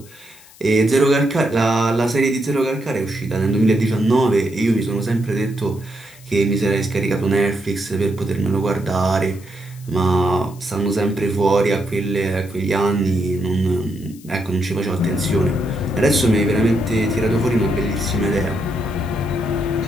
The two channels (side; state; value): left; noise; hiss, 23 dB below the sound